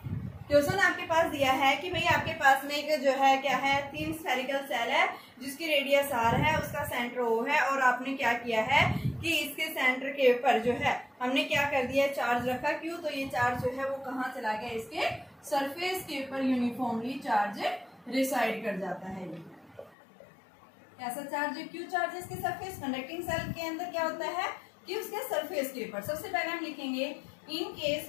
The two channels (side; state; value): right; drops out; at 20.0 s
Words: क्वेश्चन आपके पास दिया है कि भाई आपके पास में एक जो है क्या है, 3 स्फेरिकल सेल है जिसकी रेडियस आर है, उसका सेंटर ओ है, और आपने क्या किया है कि इसके सेंटर के ऊपर जो है हमने क्या कर दिया, चार्ज रखा। क्यों, तो ये चार्ज जो है वो कहाँ चला गया, इसके सरफेस के ऊपर यूनिफॉर्मली चार्ज रिसाइड कर जाता है। ऐसा चार्ज, क्यू चार्ज इसके सरफेस, कंडक्टिंग सेल के अंदर क्या होता है कि उसके सरफेस के ऊपर। सबसे पहले हम लिखेंगे in